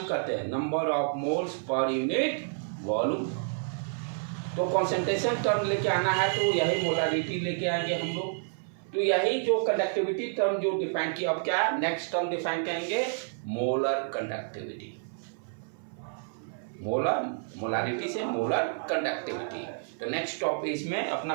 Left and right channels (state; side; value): silent; left; 58 dB below the other